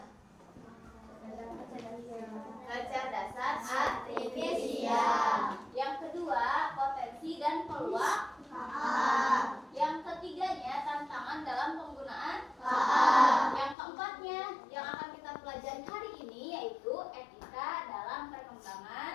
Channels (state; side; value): drops out; right; at 13.8 s